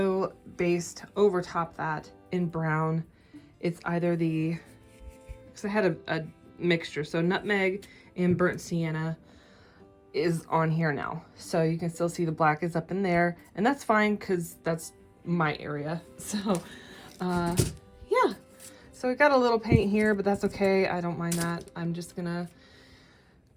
based over top that in brown. It's either because I had a mixture, so nutmeg and burnt sienna is on here now. So you can still see the black is up in there, and that's fine because that's my area. So yeah, so we got a little paint here, but that's okay. I don't mind that. I'm just gonna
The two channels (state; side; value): identical; both; correlation 1.00